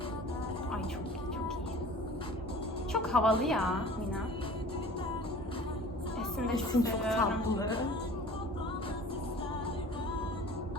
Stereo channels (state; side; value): normal; both; correlation 0.44